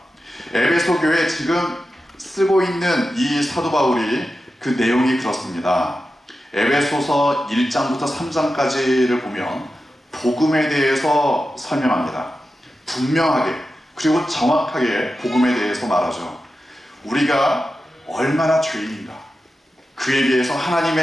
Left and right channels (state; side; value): normal; both; correlation 0.92